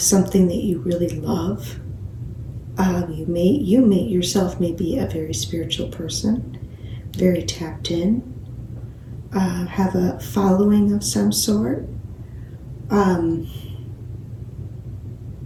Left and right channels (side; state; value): both; identical; correlation 1.00